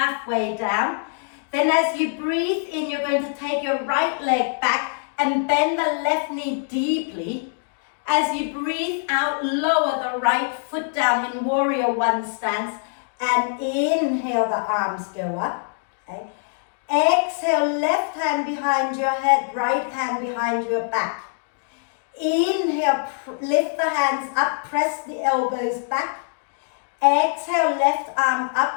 down. Then as you breathe in, you're going to take your right leg back and bend the left knee deeply. As you breathe out, lower the right foot down in warrior one stance and inhale, the arms go up. Okay? Exhale, left hand behind your head, right hand behind your back. Inhale, lift the hands up, press the elbows back. Exhale, left arm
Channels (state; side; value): silent; right; digital silence